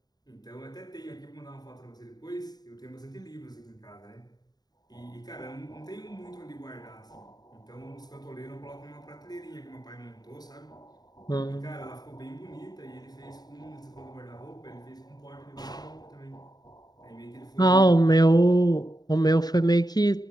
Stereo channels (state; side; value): late; right; 0.19 ms